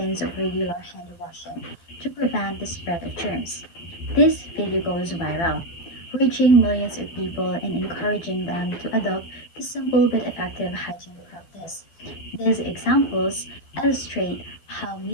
of regular hand washing to prevent the spread of germs. This video goes viral, reaching millions of people and encouraging them to adopt the simple but effective hygiene practice. These examples illustrate how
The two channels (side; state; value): right; late; 12 ms